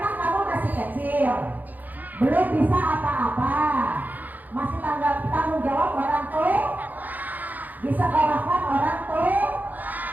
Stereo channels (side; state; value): left; late; 0.083 ms